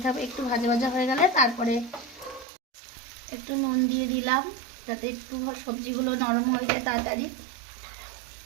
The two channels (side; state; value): left; drops out; at 2.5 s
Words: থাকবে। একটু ভাজা ভাজা হয়ে গেলে তারপরে একটু নুন দিয়ে দিলাম, যাতে একটু সবজিগুলো নরম হয়ে যায় তাড়াতাড়ি।